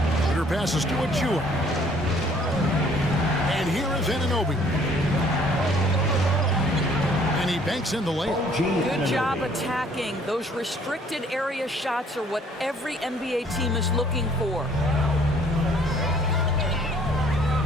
Shooter passes to Achua. And here is Anunoby. And he banks in the layup. Good job attacking. Those restricted area shots are what every NBA team is looking for.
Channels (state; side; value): normal; both; correlation 0.59